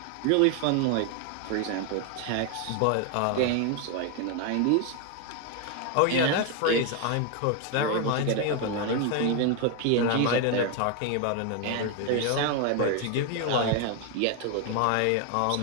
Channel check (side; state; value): both; different; correlation 0.01